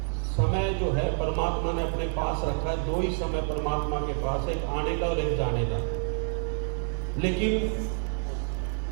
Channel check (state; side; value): silent; left; 59 dB below the other